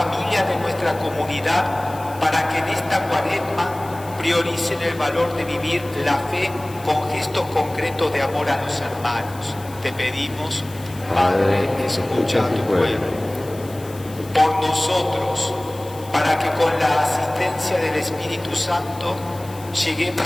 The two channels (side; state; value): left; noise; hiss, 20 dB below the sound